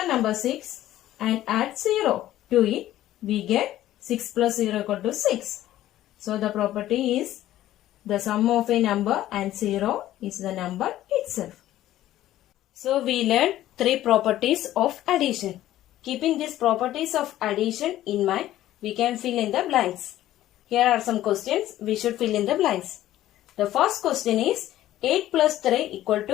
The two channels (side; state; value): right; quieter; 13.8 dB